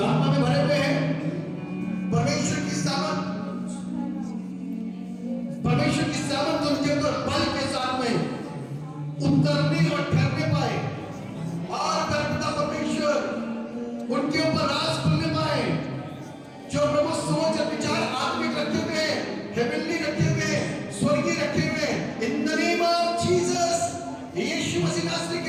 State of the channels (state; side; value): identical; both; correlation 1.00